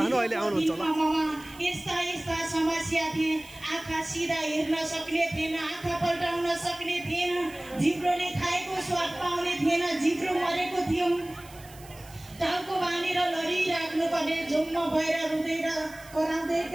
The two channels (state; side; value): noise; right; hiss, 21 dB below the sound